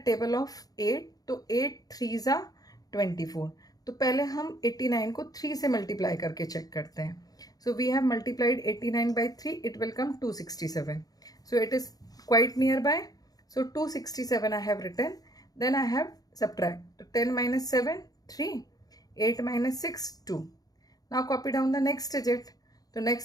of 8. तो 8 3s are 24. तो पहले हम 89 को 3 से multiply करके check करते हैं. So we have multiplied 89 by 3, it will come 267. So it is quite nearby. So 267 I have written. Then I have subtract. 10 minus 7, 3. 8 minus 6, 2. Now copy down the next digit. The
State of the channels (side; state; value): right; late; 0.18 ms